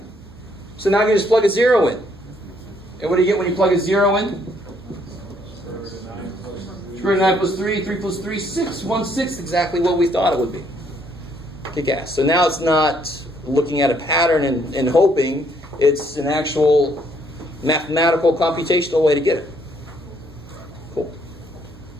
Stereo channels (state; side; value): normal; both; correlation 0.68